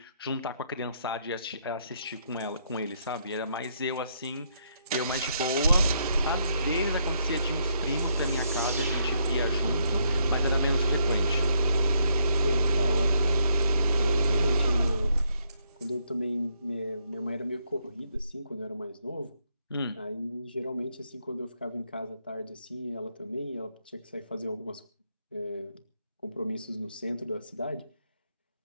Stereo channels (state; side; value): inverted; both; correlation -0.74